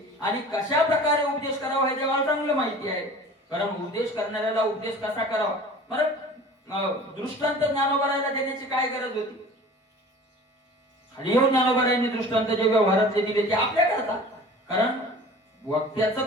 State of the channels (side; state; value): both; normal; correlation 0.43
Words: आणि कशा प्रकारे उपदेश करावा हे देवाला चांगलं माहिती आहे. कारण उपदेश करणाऱ्याला उपदेश कसा करावा, परत दृष्टांत ज्ञानोबरायला देण्याची काय गरज होती. खाली येऊन ज्ञानोबरायांनी दृष्टांत जे व्यवहारातले दिले ते आपल्या करता, कारण वक्त्याचं